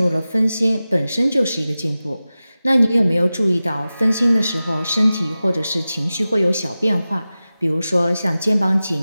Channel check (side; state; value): both; inverted; correlation -0.95